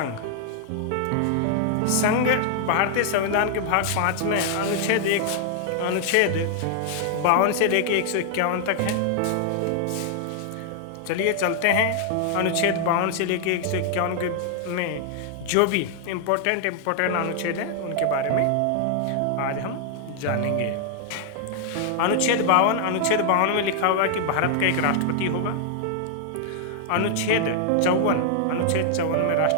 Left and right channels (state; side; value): different; both; correlation 0.00